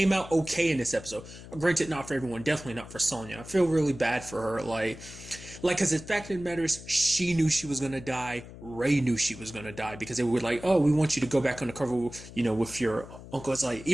out okay in this episode. Granted, not for everyone. Definitely not for Sonya. I feel really bad for her. Because the fact of the matter is, she knew she was going to die. Ray knew she was going to die because they were like, oh, we want you to go back undercover, with your uncle. It's like,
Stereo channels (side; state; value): left; noise; hum, 15 dB below the sound